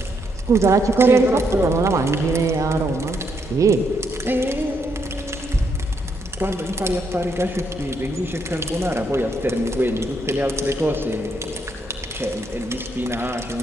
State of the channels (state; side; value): normal; both; correlation 0.76